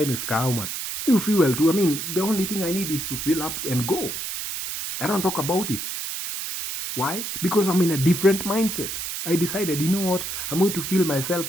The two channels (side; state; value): right; noise; hiss, 5 dB below the sound